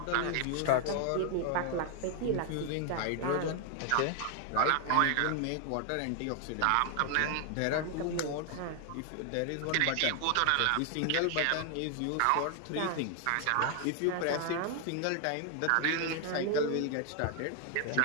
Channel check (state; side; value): different; both; correlation 0.00